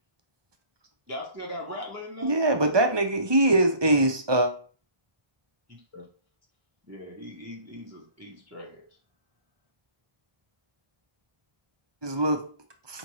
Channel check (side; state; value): left; late; 1.2 ms